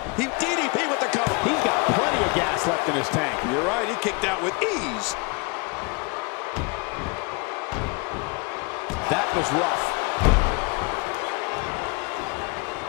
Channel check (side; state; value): right; quieter; 29.2 dB